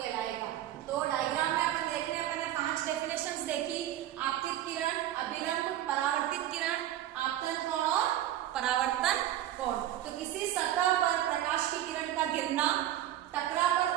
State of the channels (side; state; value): left; quieter; 12.6 dB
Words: तो डायग्राम में अपन देख रहे हैं, अपन ने 5 डेफिनेशंस देखी: आपतित किरण, अभिलंब, परावर्तित किरण, आपतन कोण और परावर्तन कोण। तो किसी सतह पर प्रकाश की किरण का गिरना, टकरा